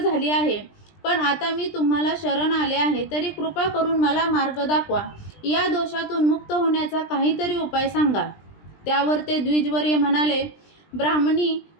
आहे. पण आता मी तुम्हाला शरण आले आहे, तरी कृपा करून मला मार्ग दाखवा. या दोषातून मुक्त होण्याचा काहीतरी उपाय सांगा. त्यावर ते द्विजवर्य म्हणाले, ब्राह्मणी,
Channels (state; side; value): late; right; 20 ms